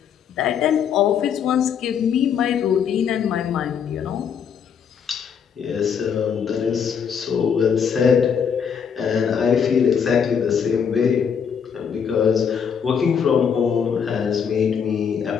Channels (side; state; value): right; quieter; 7.2 dB